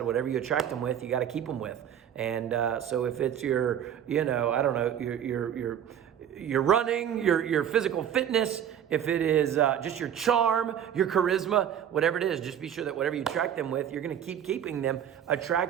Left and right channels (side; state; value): left; quieter; 9.5 dB